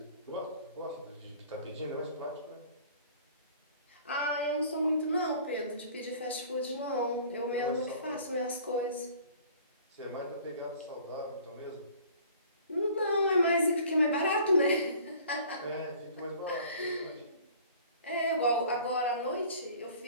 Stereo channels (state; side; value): inverted; both; correlation -0.50